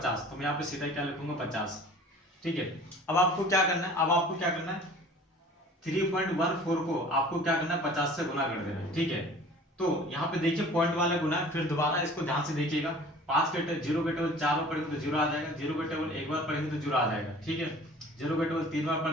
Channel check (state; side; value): normal; both; correlation 0.46